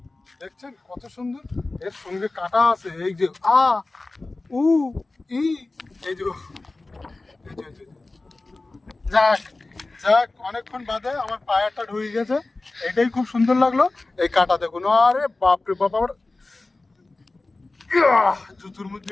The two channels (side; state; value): right; quieter; 3.2 dB